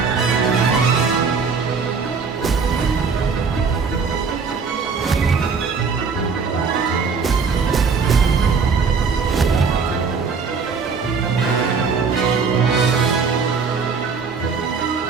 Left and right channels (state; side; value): quieter; left; 5.3 dB